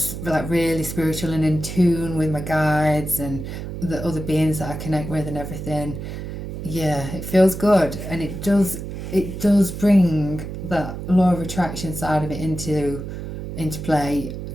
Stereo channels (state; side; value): noise; right; hum, 7 dB below the sound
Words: like really spiritual and in tune with my guides and the other beings that I connect with and everything, yeah, it feels good, and it does bring that law of attraction side of it into play,